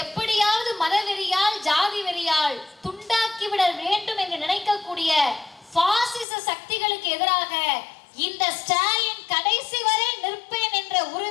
எப்படியாவது மதவெறியால் ஜாதி வெறியால் துண்டாக்கிவிட வேண்டும் என்று நினைக்கக்கூடிய பாசிச சக்திகளுக்கு எதிராக இந்த ஸ்டாலின் கடைசி வரை நிற்பேன் என்ற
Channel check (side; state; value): right; drops out; at 6.2 s